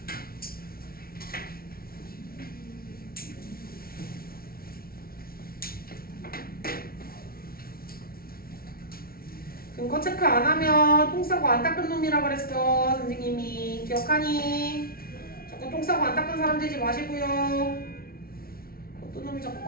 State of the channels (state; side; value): late; right; 0.44 ms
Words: 근거 체크 안 하면 똥 싸고 안 닦은 놈이라 그랬어. 선생님이 기억하니? 자꾸 똥 싸고 안 닦은 사람 되지 마시고요. 어떤 놈이 자꾸